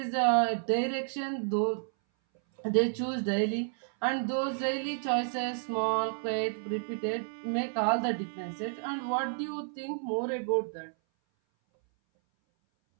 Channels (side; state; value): left; silent; 57 dB below the other